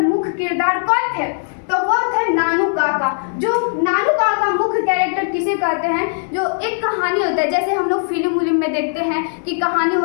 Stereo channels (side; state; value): right; silent; 62 dB below the other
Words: मुख्य किरदार कौन थे? तो वो थे नानू काका। जो नानू काका मुख्य कैरेक्टर किसे कहते हैं? जो एक कहानी होता है, जैसे हम लोग फिल्म में देखते हैं कि कहानी